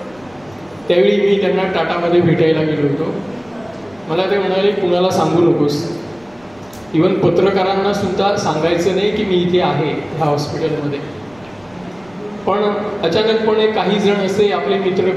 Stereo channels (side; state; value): right; noise; rumble, 28 dB below the sound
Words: त्यावेळी मी त्यांना टाटामध्ये भेटायला गेलो होतो. मला ते म्हणाले कुणाला सांगू नकोस, इवन पत्रकारांना सुद्धा सांगायचं नाही की मी इथे आहे ह्या हॉस्पिटलमध्ये. पण अचानकपणे काही जण असे आपले मित्र